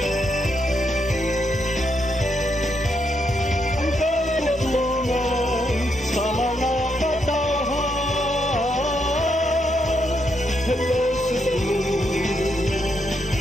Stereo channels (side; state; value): both; normal; correlation 0.79